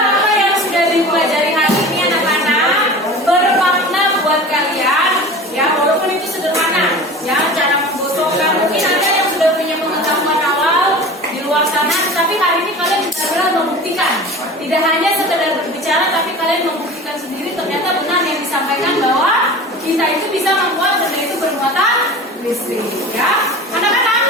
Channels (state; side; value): normal; both; correlation 0.36